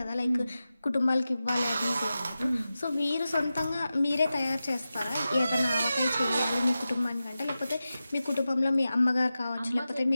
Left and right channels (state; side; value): inverted; both; correlation -0.93